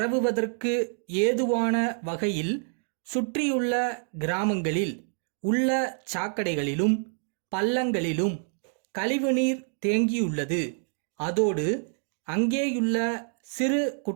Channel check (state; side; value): silent; left; 60 dB below the other